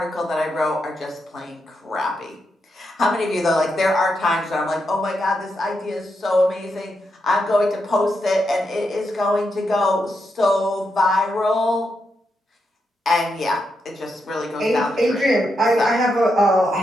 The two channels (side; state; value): both; normal; correlation 0.83